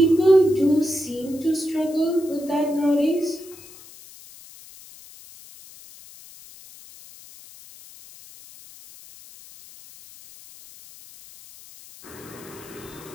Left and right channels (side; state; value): left; noise; hiss, 20 dB below the sound